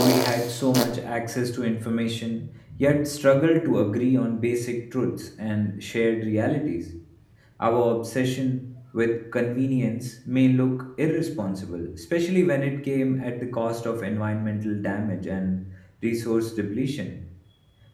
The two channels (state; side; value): identical; both; correlation 1.00